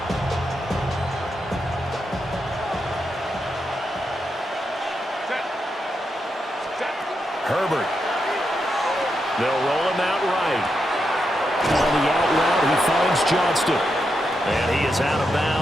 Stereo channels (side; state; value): both; normal; correlation 0.84